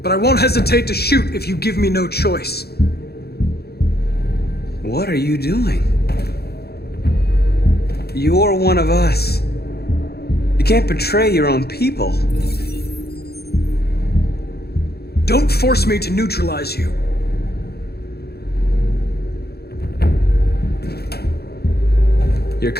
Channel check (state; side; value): late; right; 0.46 ms